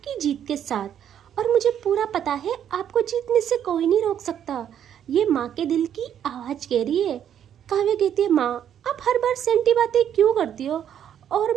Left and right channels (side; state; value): left; quieter; 9.6 dB